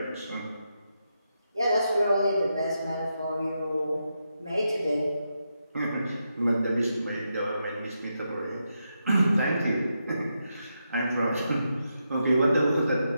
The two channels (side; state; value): both; inverted; correlation -0.85